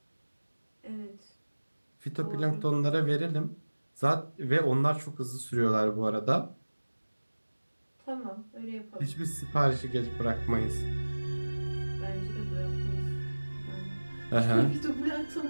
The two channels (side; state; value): both; inverted; correlation -1.00